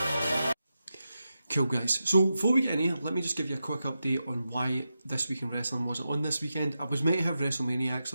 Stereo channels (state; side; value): inverted; both; correlation -0.89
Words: Cool, guys. So before we get in here, let me just give you a quick update on why This Week in Wrestling wasn't on this weekend. I was meant to have